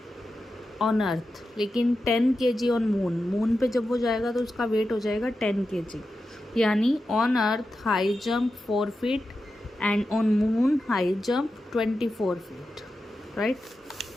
ऑन अर्थ, लेकिन 10 kg ऑन मून. मून पे जब वो जाएगा तो उसका वेट हो जाएगा 10 kg. यानी on earth high jump 4 feet and on moon high jump 24 feet, right.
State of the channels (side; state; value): both; normal; correlation 0.91